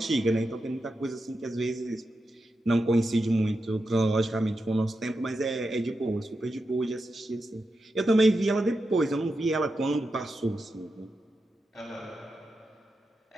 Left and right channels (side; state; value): both; normal; correlation 0.88